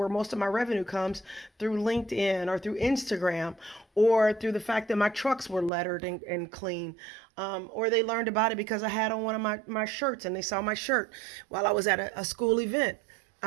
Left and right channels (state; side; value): drops out; left; at 5.7 s